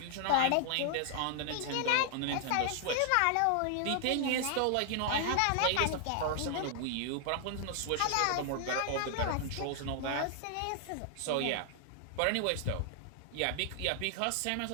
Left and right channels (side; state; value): both; different; correlation 0.00